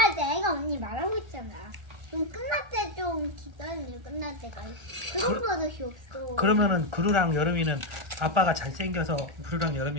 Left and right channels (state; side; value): late; left; 1.3 ms